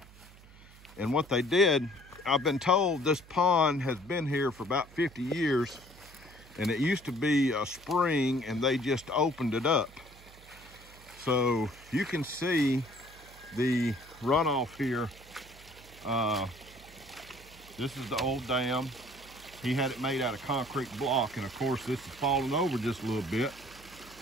And what they did, I've been told this pond has been here for about 50 years, and it used to be a spring, and they just opened it up. So you can see the runoff here. This is the old dam. He had it made out of concrete block, and of course this is falling over just a little bit.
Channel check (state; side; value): noise; right; hum, 22 dB below the sound